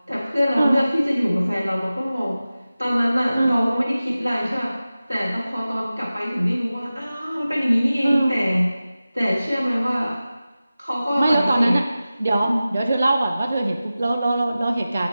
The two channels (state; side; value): inverted; both; correlation -0.96